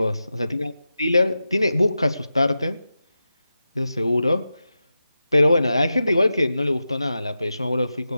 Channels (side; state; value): both; inverted; correlation -0.92